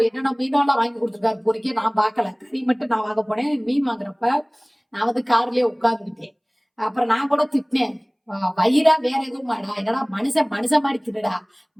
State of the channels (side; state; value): both; identical; correlation 1.00